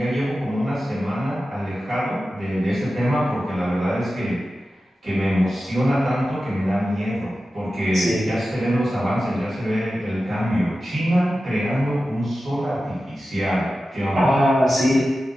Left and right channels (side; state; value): both; normal; correlation 0.93